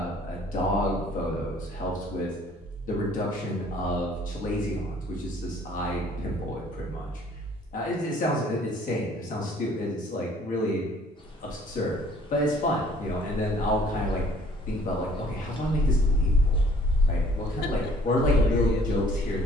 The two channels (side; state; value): both; normal; correlation 0.57